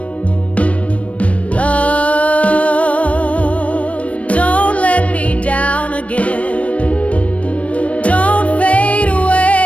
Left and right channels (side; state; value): right; late; 0.064 ms